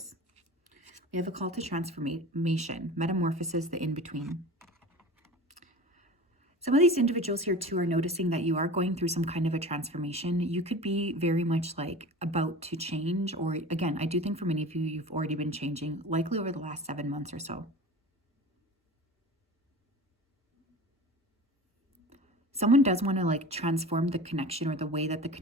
We have a call to transformation, metamorphosis, the in-between. Some of these individuals here too are noticing that you are going through some kind of a transformation. You could be very much like about to change, or again, I do think for many of you, you've already been changing, likely over the last 7 months or so. Someone does want to like transform the connection or the way that the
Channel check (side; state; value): both; normal; correlation 0.35